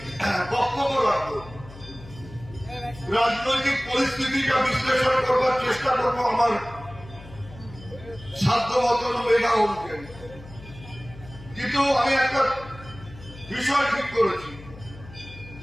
রাজনৈতিক পরিস্থিতিটা বিশ্লেষণ করবার চেষ্টা করবো আমার সাধ্য মতন মেধা অনুযায়ী, কিন্তু আমি একটা বিষয় ঠিক করেছি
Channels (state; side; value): noise; left; hum, 17 dB below the sound